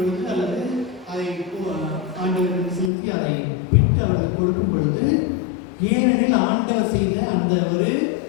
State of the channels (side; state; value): right; drops out; at 2.9 s